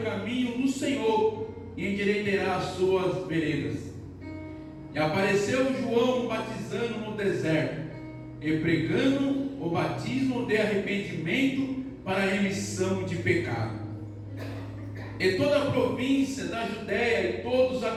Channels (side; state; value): both; identical; correlation 1.00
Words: caminho do Senhor, e endireitará as suas veredas. E apareceu João batizando no deserto, e pregando o batismo de arrependimento para a remissão de pecado. E toda a província da Judéia e todos os